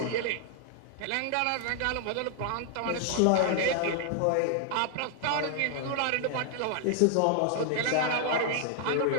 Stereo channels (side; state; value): both; different; correlation 0.00